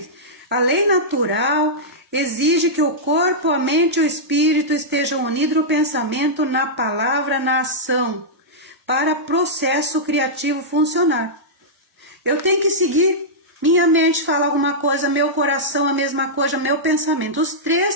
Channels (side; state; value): both; normal; correlation -0.11